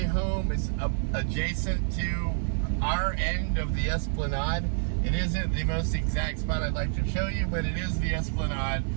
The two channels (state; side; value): silent; left; digital silence